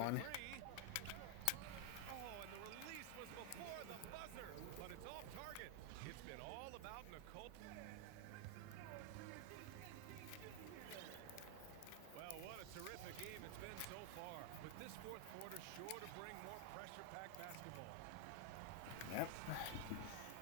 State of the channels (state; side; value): different; both; correlation 0.00